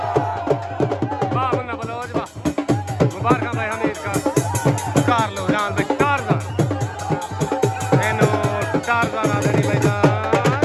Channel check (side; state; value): both; identical; correlation 1.00